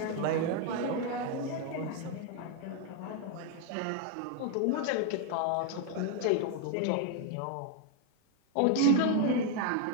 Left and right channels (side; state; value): both; different; correlation 0.00